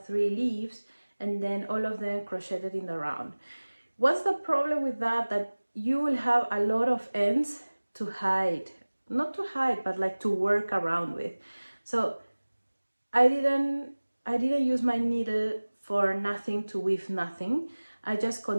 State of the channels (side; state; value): both; inverted; correlation -1.00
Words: 3 leaves, and then all of them crocheted in the round. What's the problem with that? That you will have a lot of ends to hide. Not to hide, but like to work around with. So I didn't use my needle for nothing to weave nothing. I just